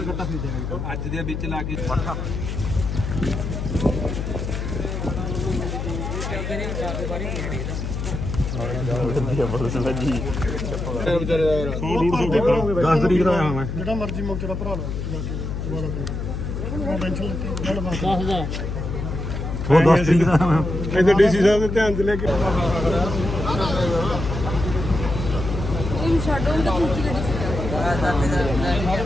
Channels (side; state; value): left; noise; hum, 4 dB below the sound